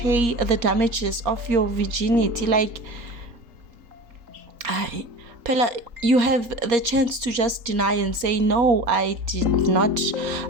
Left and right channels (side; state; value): left; late; 4.2 ms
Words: the damages of your virginity. Like, Pella, you have the chance to just deny and say, no, I did not